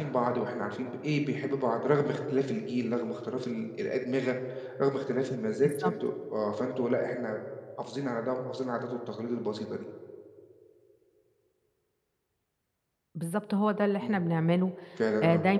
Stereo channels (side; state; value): both; identical; correlation 1.00